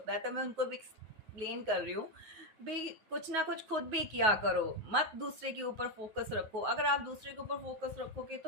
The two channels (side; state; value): left; late; 9.4 ms